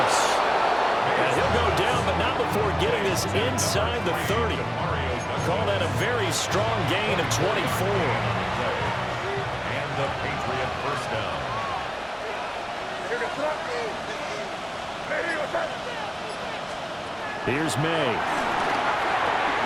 And he'll go down, but not before getting this inside the 30. Call that a very strong gain of 24. And the Patriot first down. Here's May.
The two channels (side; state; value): both; identical; correlation 1.00